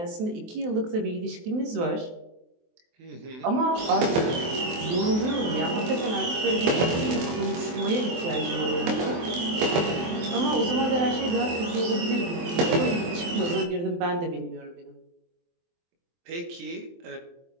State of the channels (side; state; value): left; late; 23 ms